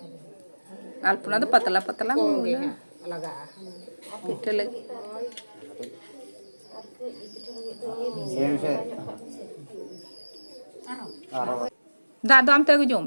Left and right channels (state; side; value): inverted; both; correlation -1.00